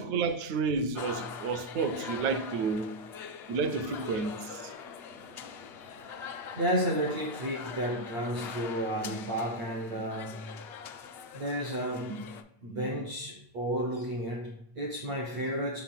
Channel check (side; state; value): left; late; 8.8 ms